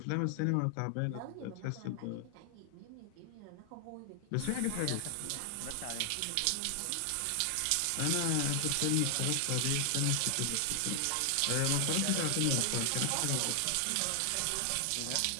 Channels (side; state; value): both; different; correlation 0.00